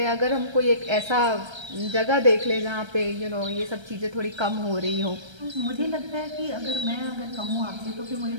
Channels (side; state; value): left; late; 1.3 ms